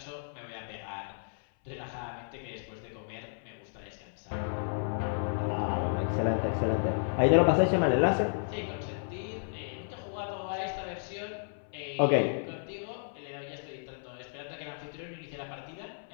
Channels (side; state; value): right; silent; 56 dB below the other